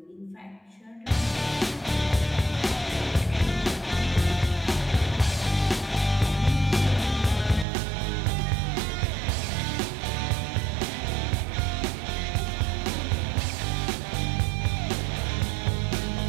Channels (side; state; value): left; drops out; at 7.7 s